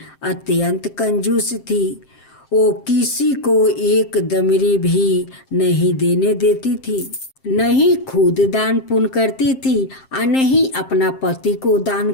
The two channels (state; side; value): late; right; 7.6 ms